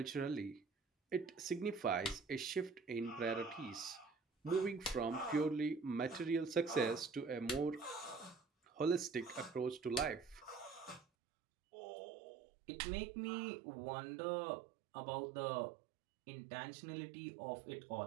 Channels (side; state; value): left; drops out; at 11.1 s